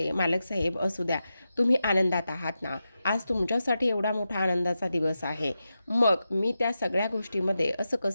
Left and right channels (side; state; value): both; inverted; correlation -0.90